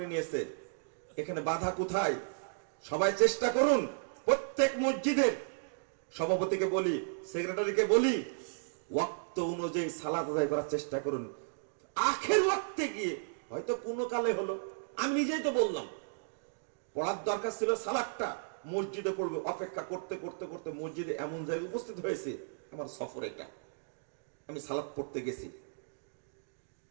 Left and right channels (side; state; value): left; silent; digital silence